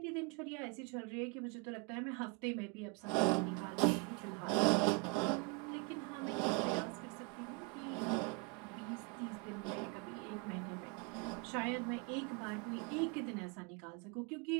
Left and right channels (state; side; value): quieter; left; 31.6 dB